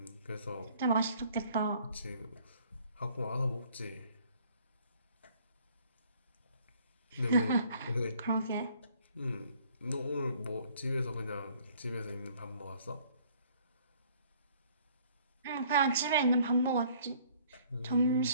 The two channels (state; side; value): inverted; both; correlation -0.58